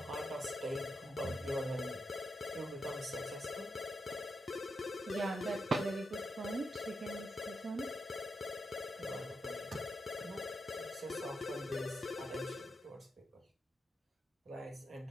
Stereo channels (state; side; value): normal; both; correlation 0.85